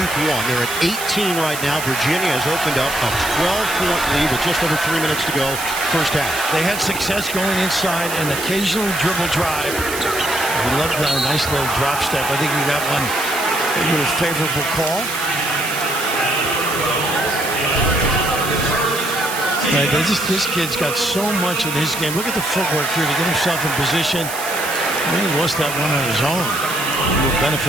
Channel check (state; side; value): noise; right; hiss, 8 dB below the sound